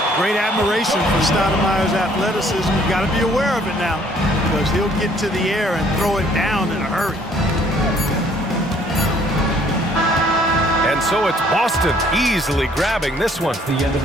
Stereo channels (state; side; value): normal; both; correlation 0.61